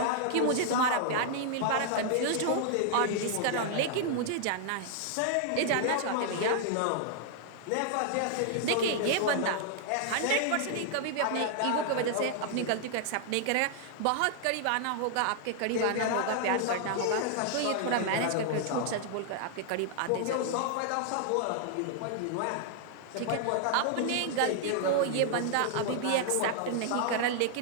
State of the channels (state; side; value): different; both; correlation 0.00